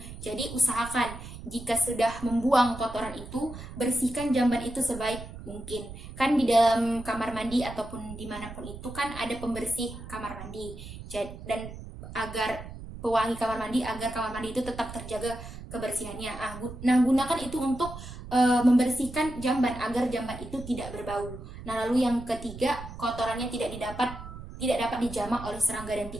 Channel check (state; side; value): noise; right; rumble, 12 dB below the sound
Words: Jadi usahakan jika sudah membuang kotoran itu, bersihkan jamban itu sebaik mungkin. Kan di dalam kamar mandi ataupun dimanapun itu kan ada pembersih kamar mandi. Dan agar pewangi kamar mandi, agar kamar mandi itu tetap terjaga kebersihannya. Nah, gunakan itu untuk membersihkan jamban agar jamban itu tidak berbau. Nah, lalu yang ketiga, kotorannya tidak dapat dijamah oleh serangga dan